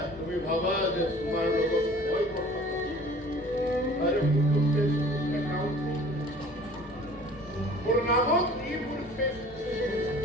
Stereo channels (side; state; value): both; normal; correlation 0.48